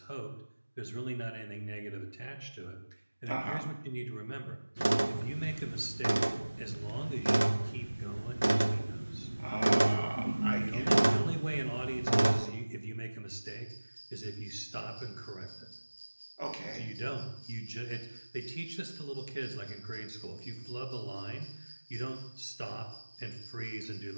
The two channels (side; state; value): both; inverted; correlation -1.00